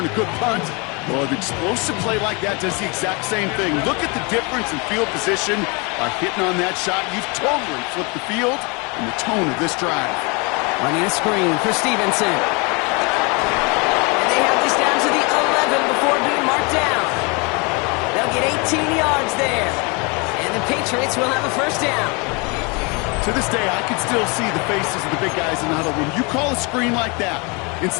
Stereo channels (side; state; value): right; quieter; 30.4 dB